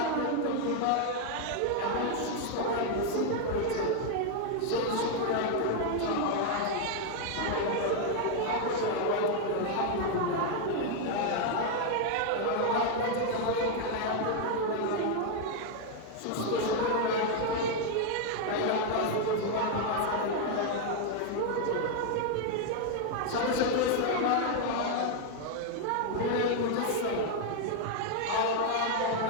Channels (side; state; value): both; different; correlation 0.00